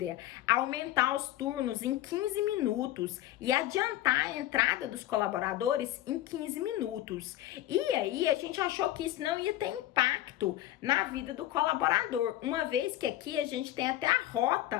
aumentar os turnos em 15 minutos e adiantar a entrada dos colaboradores em 15 minutos. E aí, a gente achou que isso não ia ter impacto na vida do colaborador, uma vez que aqui a gente tem até a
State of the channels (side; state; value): right; quieter; 14.4 dB